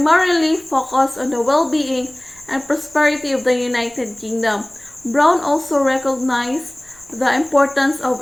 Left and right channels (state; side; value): noise; left; rumble, 30 dB below the sound